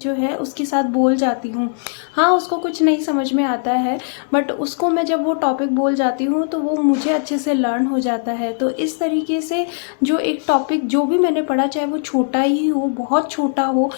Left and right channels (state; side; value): silent; right; digital silence